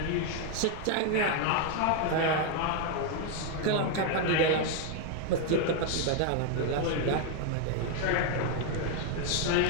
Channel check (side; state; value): both; different; correlation 0.01